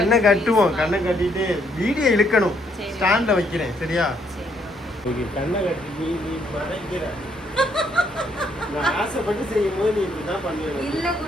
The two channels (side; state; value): both; normal; correlation 0.71